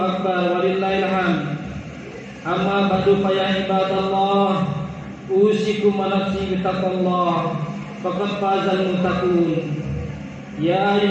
walillahil hamd. Amma ba'du fa ya ibadallah, usikum wa nafsi bittaqwallah faqad fazal muttaqun. Ya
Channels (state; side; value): identical; both; correlation 1.00